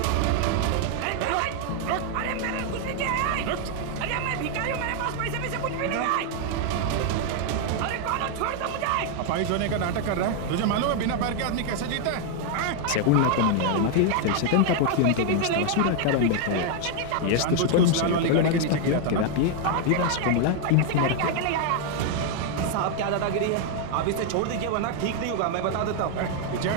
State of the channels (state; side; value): different; both; correlation 0.00